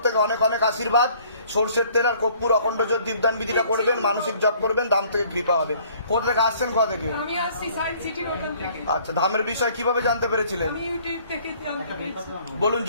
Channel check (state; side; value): inverted; both; correlation -0.57